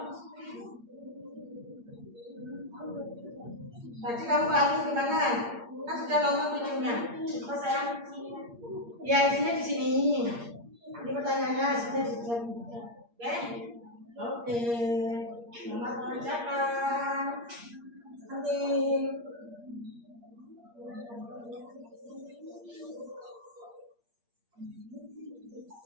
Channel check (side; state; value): left; late; 8.6 ms